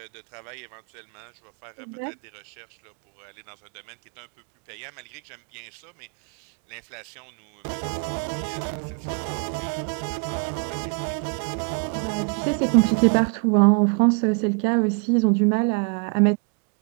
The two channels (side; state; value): left; quieter; 37.0 dB